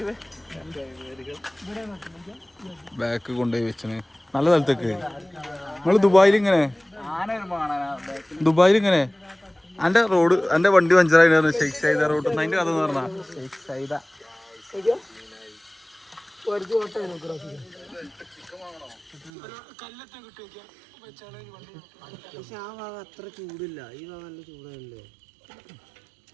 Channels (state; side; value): drops out; left; at 19.3 s